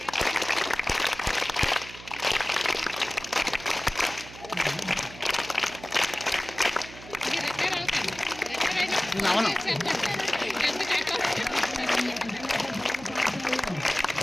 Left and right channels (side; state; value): right; noise; hum, 16 dB below the sound